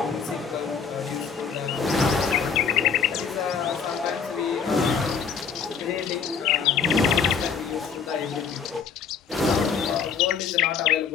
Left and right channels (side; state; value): right; quieter; 6.4 dB